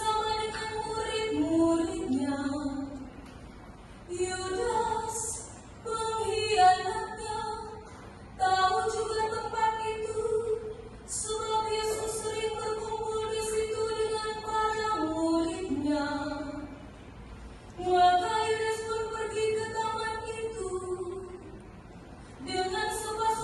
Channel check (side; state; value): both; identical; correlation 1.00